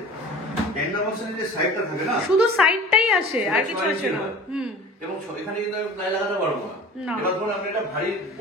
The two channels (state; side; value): normal; both; correlation 0.40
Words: ট্যান্ডাম বক্সের যে সাইডটা থাকে না, শুধু সাইডটাই আসে আর কিছু আসে না। এবং এখানে কিন্তু আমি প্লাই লাগাতে পারবো না। এবার ধরুন আপনি একটা ভারী